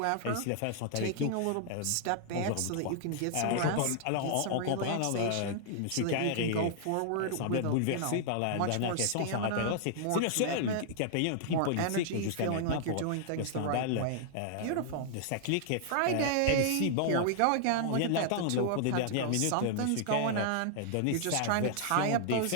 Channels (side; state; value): both; different; correlation -0.01